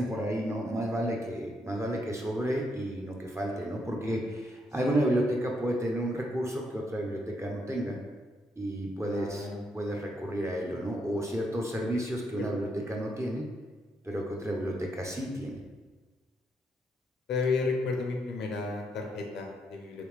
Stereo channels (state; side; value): normal; both; correlation 0.78